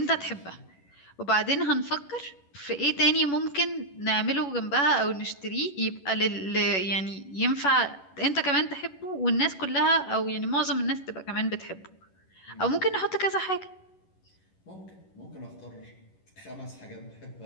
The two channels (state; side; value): late; right; 11 ms